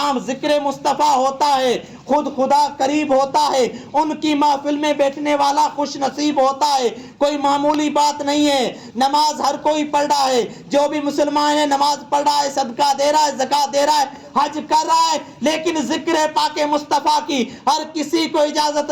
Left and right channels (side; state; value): both; identical; correlation 1.00